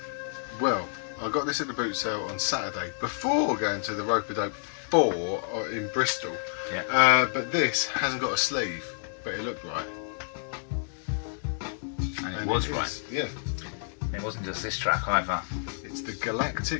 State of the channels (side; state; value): right; silent; digital silence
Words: Well, I got this at the boot sale on Saturday before going to the Rope-a-Dope 4 in Bristol. Yeah. But this hasn't got a sleeve, but it looked right. And it was right. Yeah. It wasn't just this track either. It's the